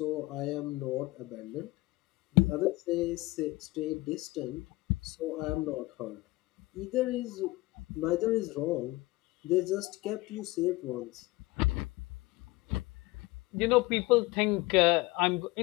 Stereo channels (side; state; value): right; quieter; 20.7 dB